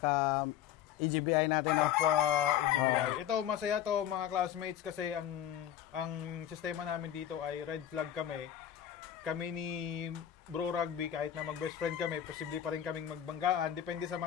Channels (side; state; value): right; quieter; 10.7 dB